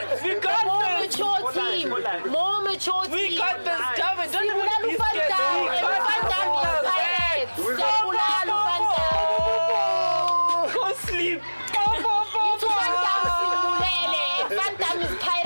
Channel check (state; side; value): inverted; both; correlation -1.00